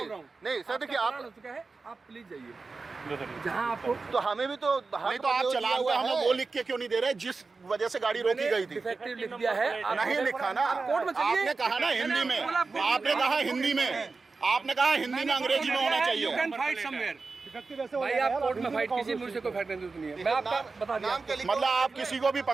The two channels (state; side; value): quieter; left; 4.1 dB